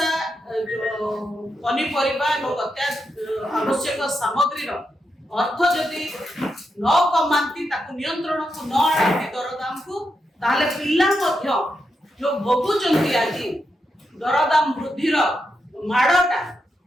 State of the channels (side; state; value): both; normal; correlation 0.85